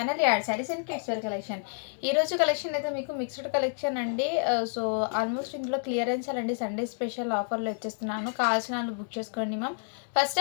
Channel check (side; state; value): right; silent; digital silence